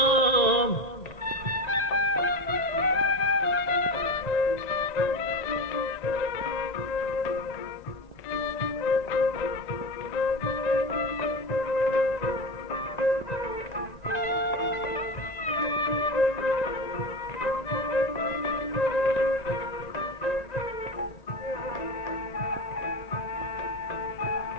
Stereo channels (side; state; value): right; late; 1.9 ms